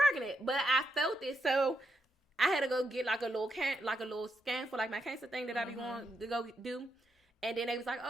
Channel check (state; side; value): normal; both; correlation 0.81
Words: pregnant, but I felt it, so I had to go get like a little scan for like my cancer thing that I be going to go do. And then they was like,